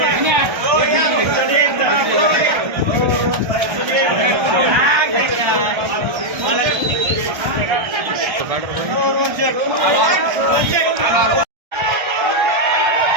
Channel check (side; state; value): left; late; 1.3 ms